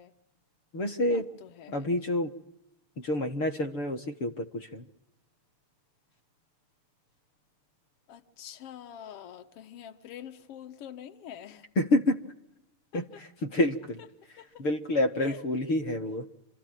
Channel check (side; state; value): right; late; 6.8 ms